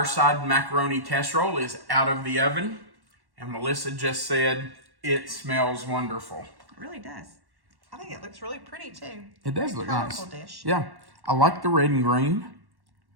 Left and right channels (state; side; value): late; left; 1.1 ms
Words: Macaroni Casserole is out of the oven. And Melissa just said it smells wonderful. It really does. I think it looks really pretty too. It does look nice. Dish. Yeah. I like the red and green.